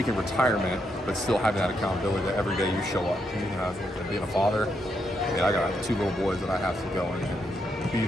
retirement, but still having that accountability that every day you show up. Being a father, I got 2 little boys that I have to go and be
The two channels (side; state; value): both; normal; correlation 0.79